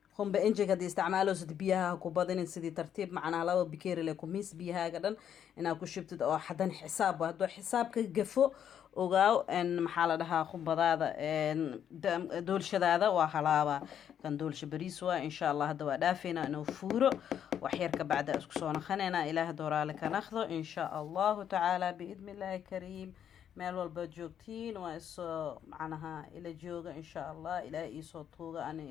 هم بإنجك هدي استعماله سد بيها كوبادين سدي ترتيب معنا لو بكير لكم ميس بيها قدن إن كشبت أو حدا حساب وهدو حساب كجفو وقاو إن محل لها خبضة إن دول شذا وحلاوة كان دول شبريسوا إن شاء الله هدو دافنا إنه فورو وحيرك بعد أسكسونا خنينا إلى هدورا لك ناخذه إن شاء الله تعالى بإذن الله الكريم meel walba joogtiin waa isoo macnaha ila jooga insha allah ilaahay isoo tuuga ana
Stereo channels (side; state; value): right; quieter; 9.2 dB